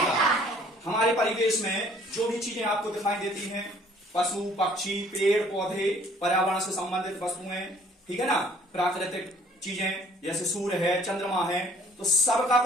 हमारे परिवेश में जो भी चीजें आपको दिखाई देती हैं, पशु पक्षी पेड़ पौधे पर्यावरण से संबंधित वस्तुएं, ठीक है ना, प्राकृतिक चीजें जैसे सूर्य है चंद्रमा है, तो सबका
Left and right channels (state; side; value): normal; both; correlation 0.57